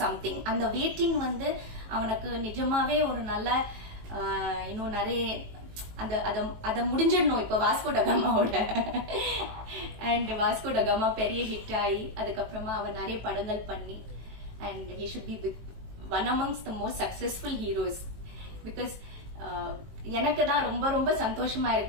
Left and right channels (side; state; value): left; late; 18 ms